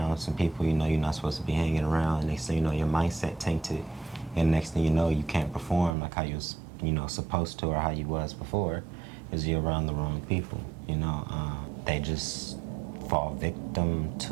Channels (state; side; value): drops out; left; at 6.0 s